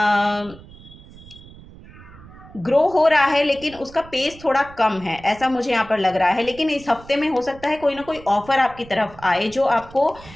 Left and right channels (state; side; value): noise; right; rumble, 20 dB below the sound